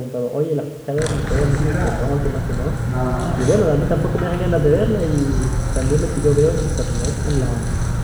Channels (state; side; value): identical; both; correlation 1.00